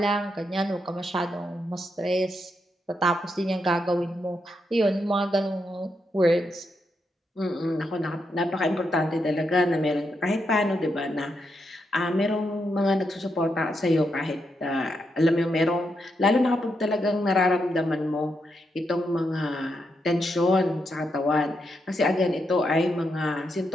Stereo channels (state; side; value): normal; both; correlation 0.82